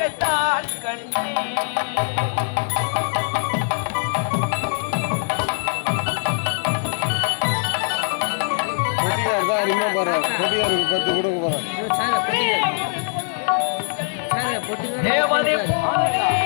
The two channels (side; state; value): right; silent; 64 dB below the other